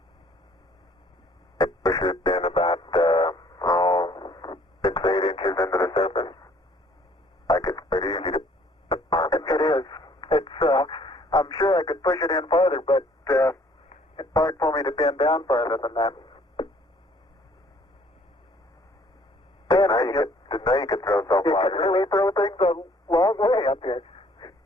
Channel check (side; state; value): both; normal; correlation 0.59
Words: it pushes in about, 6, 8 inches into the surface. Like it's pretty easy to It is. It's, I'm sure I could push it in farther, but, it's hard for me to bend down farther than that. Didn't know you could throw so You far. can really throw things a long way up here.